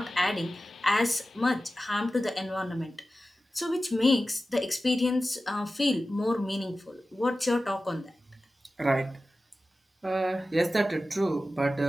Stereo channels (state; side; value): normal; both; correlation 0.94